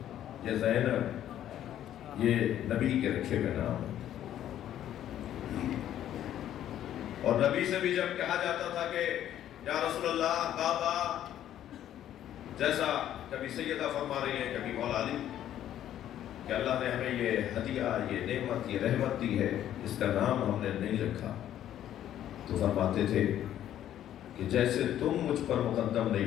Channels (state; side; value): quieter; right; 11.4 dB